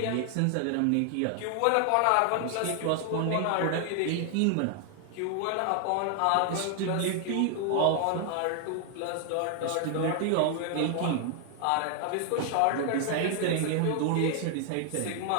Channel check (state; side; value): different; both; correlation 0.00